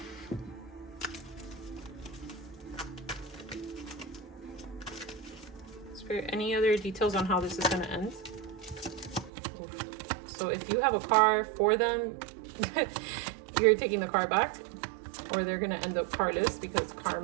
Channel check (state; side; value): drops out; left; at 9.3 s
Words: Spirit, any other details on how this is going to end? Oof. So if you have a car for them, you're taking the car back, or they're going to end up carless because